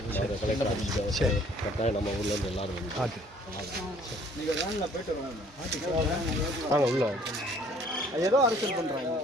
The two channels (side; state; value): both; normal; correlation 0.58